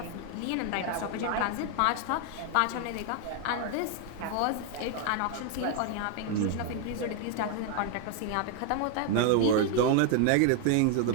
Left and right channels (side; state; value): both; different; correlation 0.00